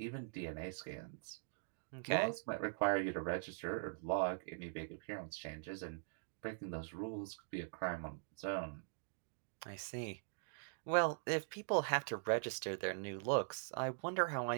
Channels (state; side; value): silent; left; digital silence